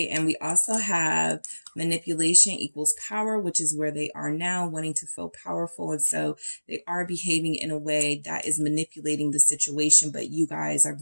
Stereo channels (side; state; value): both; inverted; correlation -1.00